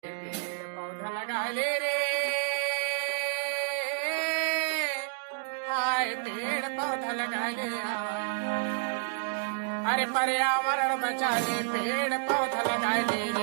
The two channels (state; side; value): silent; left; digital silence